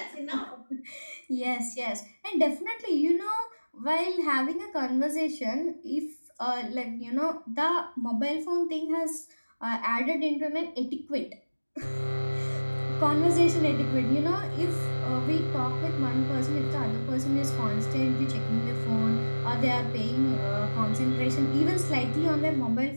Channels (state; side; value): inverted; both; correlation -1.00